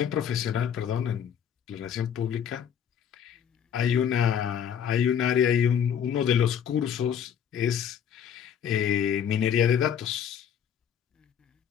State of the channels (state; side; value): quieter; right; 8.5 dB